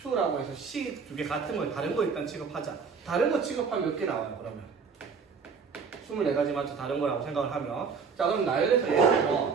해서 C 두 개 같은 거, 다른 거 일단 취급하자. 다른 거 취급하면 몇 개 나와요, 그러면? 24가지 맞죠? 다른 거라고 생각을 하면. 자, 그럼 나열해서 예를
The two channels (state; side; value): quieter; left; 5.6 dB